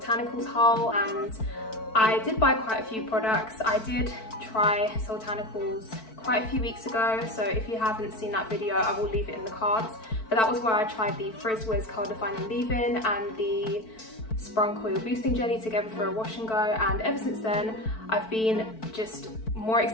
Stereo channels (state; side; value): late; right; 4.5 ms